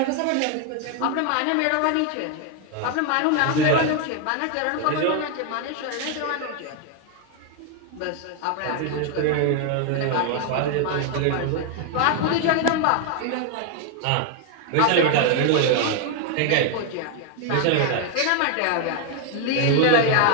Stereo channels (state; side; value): different; both; correlation 0.00